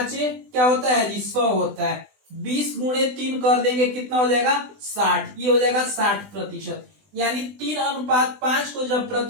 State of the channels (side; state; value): left; late; 20 ms